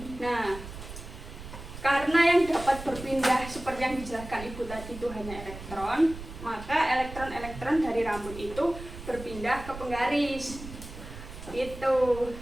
Nah, karena yang dapat berpindah seperti yang dijelaskan Ibu tadi itu hanya elektron, maka elektron-elektron dari rambut itu berpindah ke penggaris. Itu.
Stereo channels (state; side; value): noise; right; rumble, 12 dB below the sound